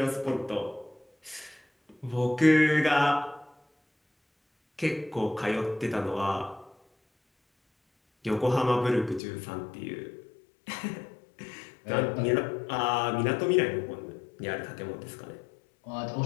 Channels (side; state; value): right; drops out; at 9.2 s